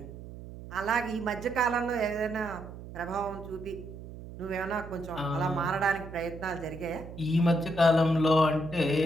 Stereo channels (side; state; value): right; noise; hum, 13 dB below the sound